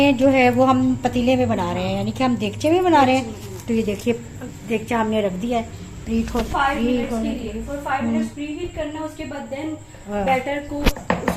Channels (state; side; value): identical; both; correlation 1.00